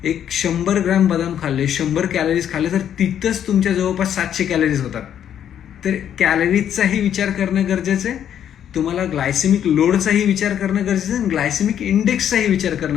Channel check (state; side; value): quieter; right; 9.7 dB